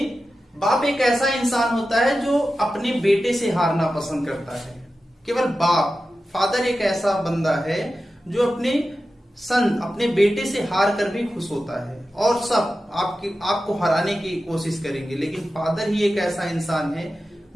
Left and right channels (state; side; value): normal; both; correlation 0.93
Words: बाप एक ऐसा इंसान होता है जो अपने बेटे से हारना पसंद करता है। केवल बाप, फादर एक ऐसा बंदा है जो अपने बेटे से हार कर भी खुश होता है, और सब आपको हराने की कोशिश करेंगे, लेकिन फादर ही एक ऐसा इंसान है